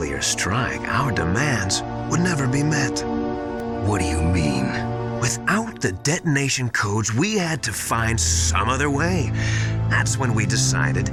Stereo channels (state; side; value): identical; both; correlation 1.00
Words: strike, our demands would never be met. What do you mean? Without the detonation codes, we had to find some other way. That's when we decided